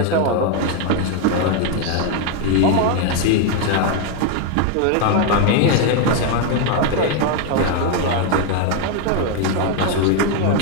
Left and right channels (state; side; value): different; both; correlation 0.01